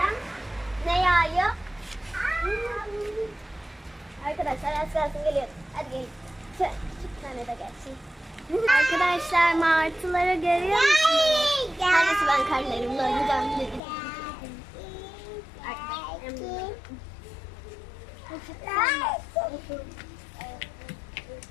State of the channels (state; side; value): drops out; right; at 13.8 s